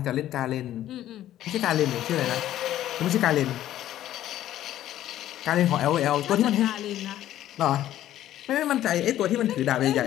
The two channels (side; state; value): right; quieter; 12.8 dB